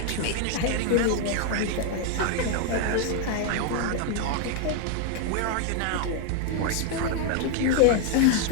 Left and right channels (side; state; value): both; different; correlation 0.00